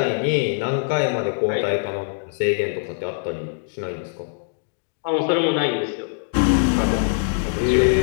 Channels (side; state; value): right; silent; digital silence